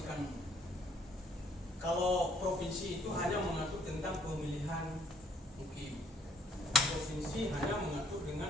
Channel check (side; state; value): both; normal; correlation 0.62